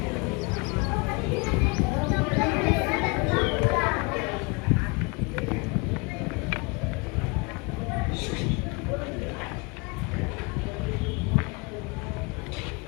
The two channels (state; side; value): quieter; right; 29.6 dB